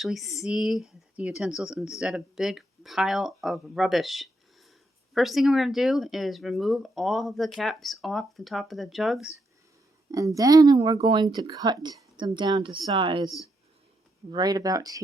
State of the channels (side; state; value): both; normal; correlation 0.80